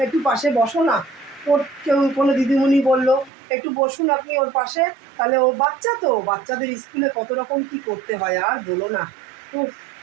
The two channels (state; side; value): drops out; left; at 3.3 s